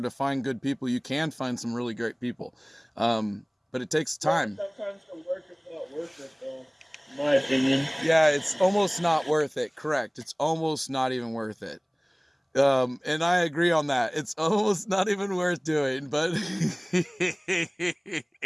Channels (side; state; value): both; identical; correlation 1.00